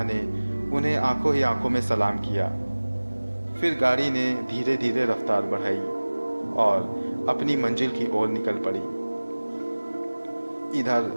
ने उन्हें आंखों ही आंखों में सलाम किया। फिर गाड़ी ने धीरे धीरे रफ्तार बढ़ाई और अपनी मंजिल की ओर निकल पड़ी। इधर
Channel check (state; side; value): inverted; both; correlation -1.00